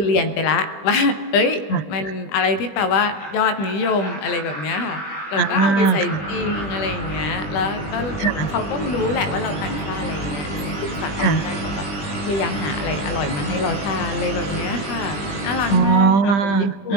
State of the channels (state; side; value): late; right; 20 ms